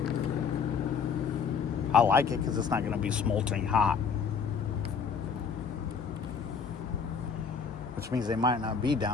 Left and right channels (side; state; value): right; quieter; 5.9 dB